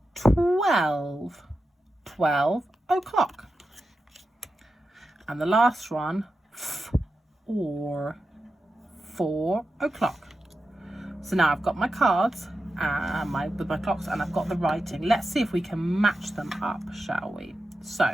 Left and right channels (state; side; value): normal; both; correlation 0.90